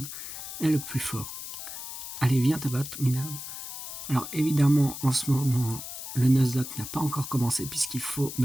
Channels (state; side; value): noise; left; hiss, 9 dB below the sound